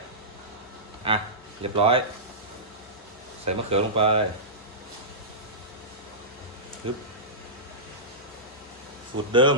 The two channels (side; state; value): both; normal; correlation -0.17